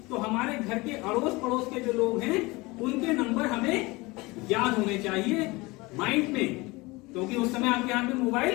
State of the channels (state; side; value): quieter; right; 23.2 dB